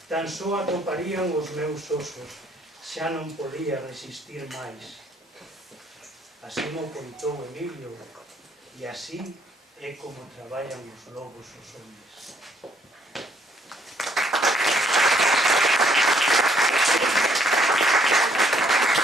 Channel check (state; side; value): normal; both; correlation 0.68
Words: tan só atoparían os meus osos. Xa non podía resistir máis». Así mo contou Emilio, e así é como traballan os lobos os homes.